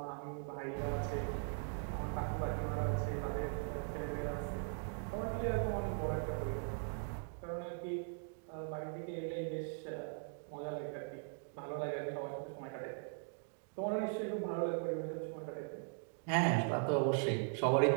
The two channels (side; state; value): left; silent; 51 dB below the other